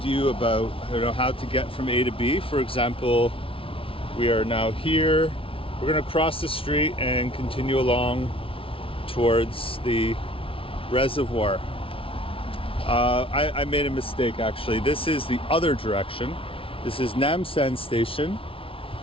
you about how to get from A to B. For example, we are now here. We're going to cross the street and continue along towards the reservoir. I made a mistake actually. This is the other direction. This is Namsan station.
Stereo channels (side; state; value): right; late; 0.26 ms